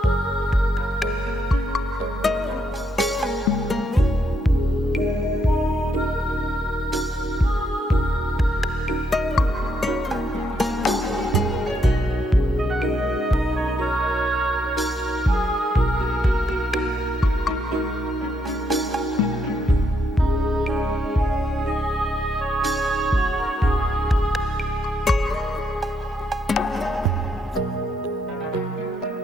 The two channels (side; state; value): both; normal; correlation 0.76